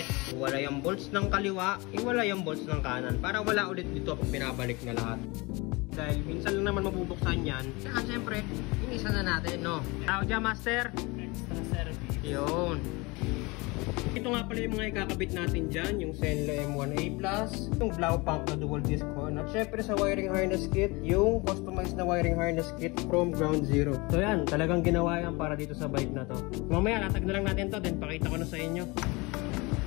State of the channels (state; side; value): quieter; right; 25.3 dB